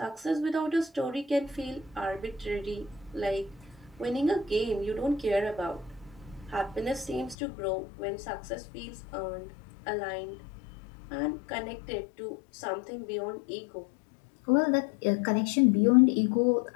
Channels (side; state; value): right; drops out; at 7.4 s